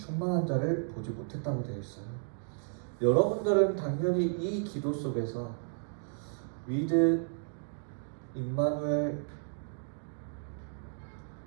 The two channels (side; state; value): left; silent; digital silence